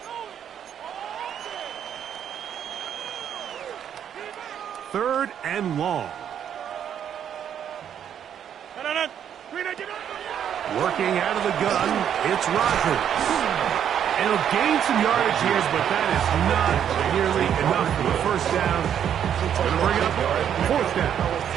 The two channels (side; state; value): left; quieter; 9.2 dB